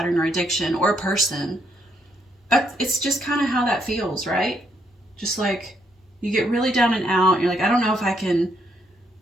or addiction or a person, it's just kind of how that feels, right? Just like you get really down and out. You're like, I don't know if I can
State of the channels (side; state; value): both; normal; correlation 0.74